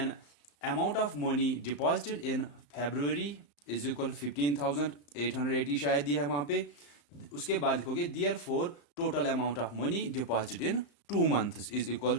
amount of money deposited in February is equal 15,880 शायद दिया है वहां पे। उसके बाद लिखोगे therefore total amount of money deposited in 2 months is equal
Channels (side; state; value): right; late; 35 ms